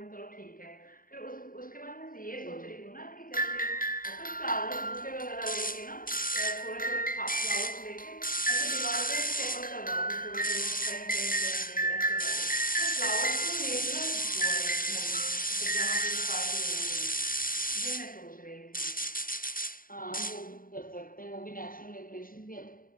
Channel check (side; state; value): right; late; 0.41 ms